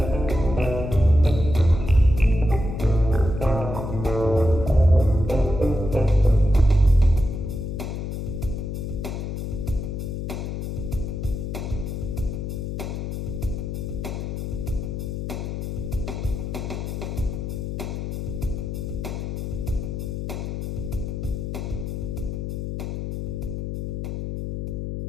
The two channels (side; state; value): left; noise; hum, 4 dB below the sound